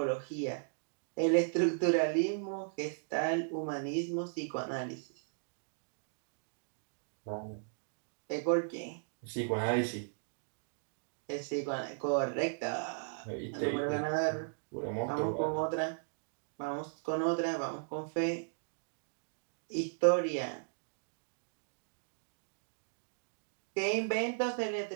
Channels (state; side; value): silent; left; digital silence